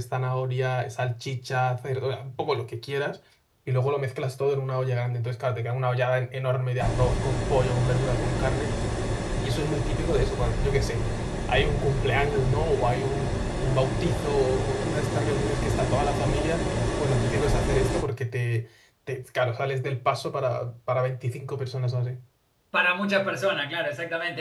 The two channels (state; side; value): identical; both; correlation 1.00